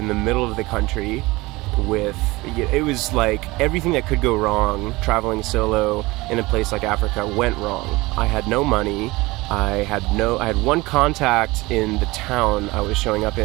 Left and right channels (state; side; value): quieter; left; 21.5 dB